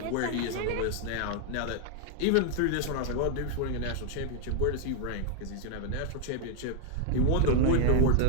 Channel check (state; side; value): different; both; correlation 0.00